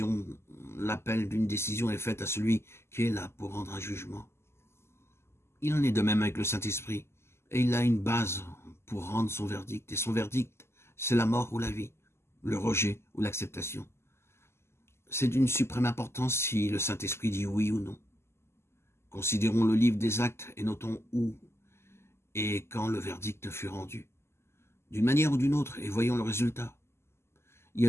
l'appel d'une décision est fait à celui qui est là pour rendre un jugement. Il en est de même avec le Saint-Esprit, et il a une base pour rendre son verdict, et son verdict, c'est la mort ou la vie, le rejet ou l'acceptation. C'est d'une suprême importance si le Saint-Esprit dit oui ou non. Considérons le livre des actes et notons où et quand le verdict fut rendu, d'une manière ou d'une autre, et voyons le résultat. Il y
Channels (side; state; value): right; late; 0.12 ms